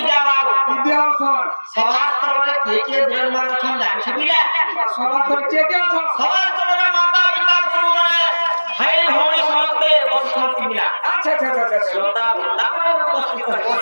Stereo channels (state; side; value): inverted; both; correlation -1.00